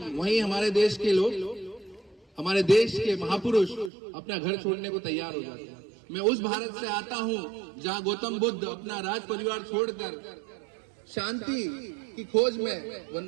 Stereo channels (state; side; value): drops out; left; at 3.9 s